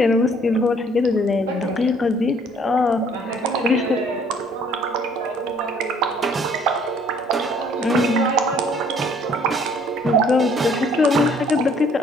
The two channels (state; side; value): normal; both; correlation 0.59